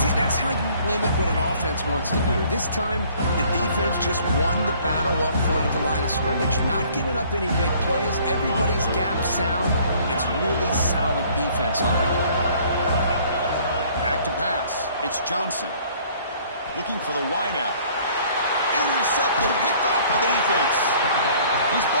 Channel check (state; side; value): inverted; both; correlation -0.57